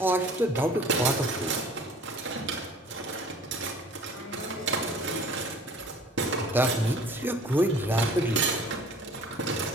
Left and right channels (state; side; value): normal; both; correlation 0.49